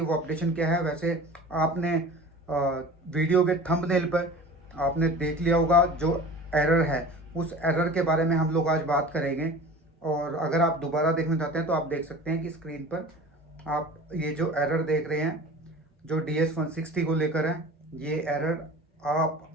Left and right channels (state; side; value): normal; both; correlation 0.39